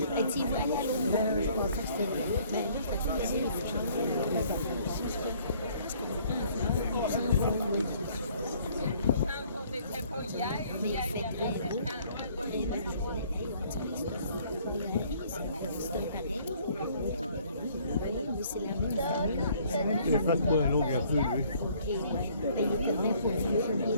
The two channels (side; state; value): both; inverted; correlation -0.60